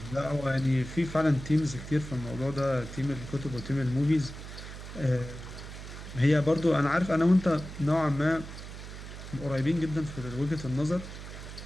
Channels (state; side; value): noise; right; hum, 11 dB below the sound